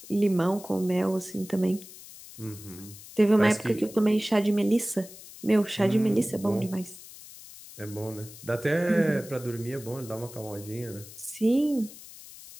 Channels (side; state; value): left; noise; hiss, 17 dB below the sound